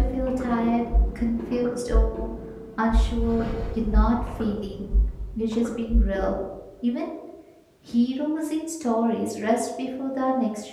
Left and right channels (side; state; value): both; identical; correlation 1.00